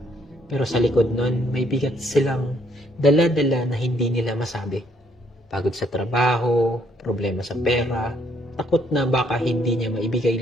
Pero sa likod nun, may bigat silang dala-dala na hindi nila masabi. Pagod sa trabaho, problema sa pera, takot na baka hindi niya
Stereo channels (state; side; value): normal; both; correlation 0.68